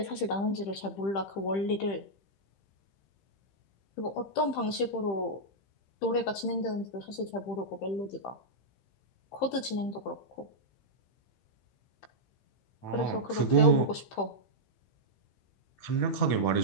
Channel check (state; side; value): late; right; 15 ms